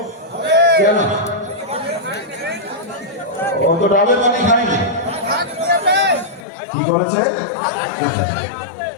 কেন? ও তো ডাবের পানি খায়নি, কি করেছে?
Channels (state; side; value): drops out; right; at 6.5 s